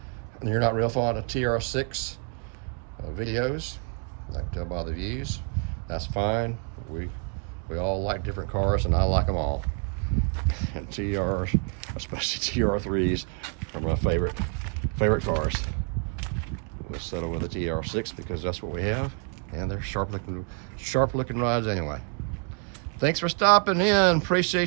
not real fond of TR6 videos. I can tell by the views. That's fine. We We all like different cars, and I like them all. And TRs, especially TR3s, are my favorite cars. We'll settle with a TR6 because that's what we have, and they're sharp looking rides anyway. Thanks for stopping in.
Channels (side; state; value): left; quieter; 39.9 dB